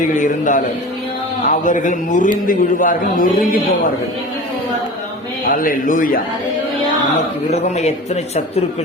இருந்தாலும் அவர்கள் முறிந்து விடுவார்கள், நொறுங்கி போவார்கள். அல்லேலூயா. நமக்கு விரோதமாக எத்தனை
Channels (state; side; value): normal; both; correlation 0.35